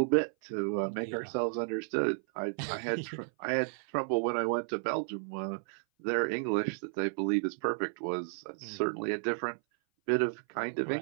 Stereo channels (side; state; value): left; silent; 56 dB below the other